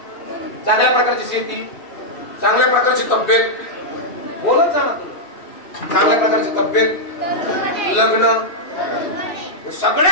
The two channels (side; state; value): right; late; 2.8 ms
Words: चांगल्या प्रकारची शेती, चांगल्या प्रकारची तब्येत. बोलत जा ना तुम्ही. चांगल्या प्रकारची तब्येत, लग्न,